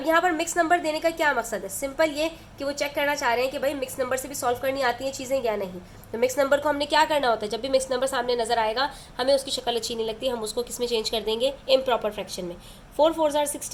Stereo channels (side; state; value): both; identical; correlation 1.00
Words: यहाँ पर मिक्स नंबर देने का क्या मकसद है? सिंपल ये कि वो चेक करना चाह रहे हैं कि भाई मिक्स नंबर से भी सॉल्व करनी आती हैं चीज़ें या नहीं। तो मिक्स नंबर को हमने क्या करना होता है, जब भी मिक्स नंबर सामने नजर आएगा हमें उसकी शक्ल अच्छी नहीं लगती, हम उसको किस में चेंज कर देंगे? इम्प्रॉपर फ्रैक्शन में। 4 4 आर